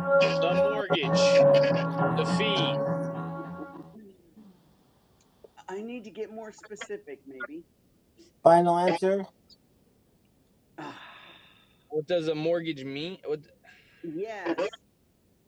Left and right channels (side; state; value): both; identical; correlation 1.00